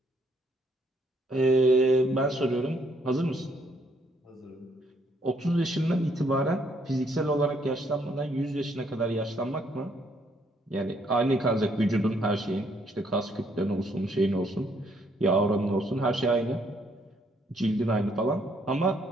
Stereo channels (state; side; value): normal; both; correlation 0.70